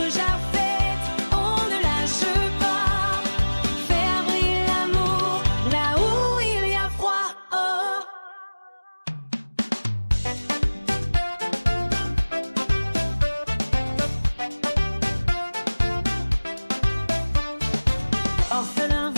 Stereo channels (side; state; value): both; inverted; correlation -1.00